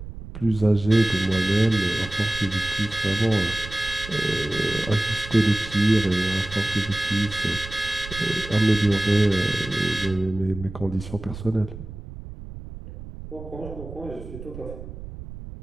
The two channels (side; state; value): right; noise; rumble, 12 dB below the sound